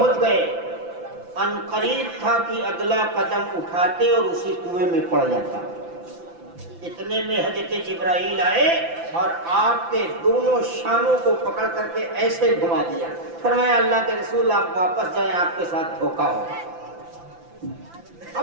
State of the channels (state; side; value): late; left; 5.9 ms